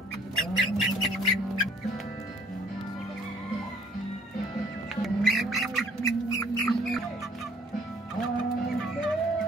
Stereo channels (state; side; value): normal; both; correlation 0.59